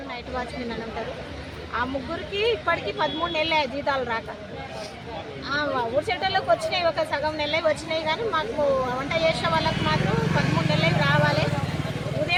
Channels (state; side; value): identical; both; correlation 1.00